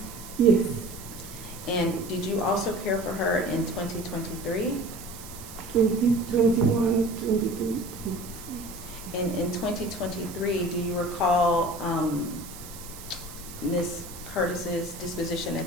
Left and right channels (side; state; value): right; noise; hiss, 15 dB below the sound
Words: Yes, And did you also care for her in 2023? 2021, 22. And in 2023, do you recall Ms. Curtis's disposition